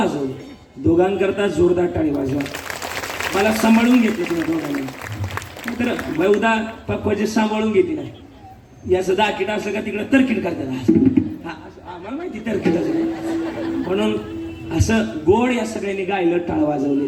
दोघांकरता जोरदार टाळी वाजवा मला सांभाळून घेतलं तुम्ही दोघांनी तर बहुधा पक्वाचे सांभाळून घेतली नाही याचं दाकीट असलं का तिकडं तरकीट करतात आम्हाला माहिती तरकीट असं म्हणून असं गोड या सगळ्यांनी गायलं टाळ वाजवले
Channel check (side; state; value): both; identical; correlation 1.00